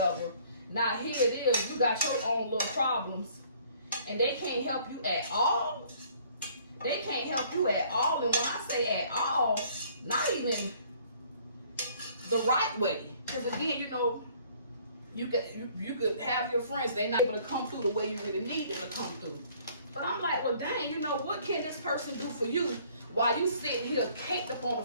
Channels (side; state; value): both; inverted; correlation -0.58